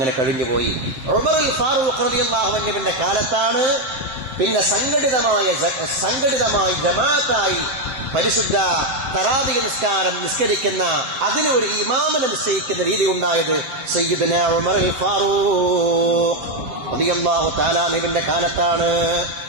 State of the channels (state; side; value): late; left; 7.7 ms